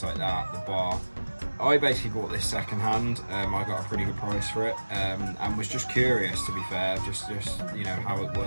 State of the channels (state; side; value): inverted; both; correlation -1.00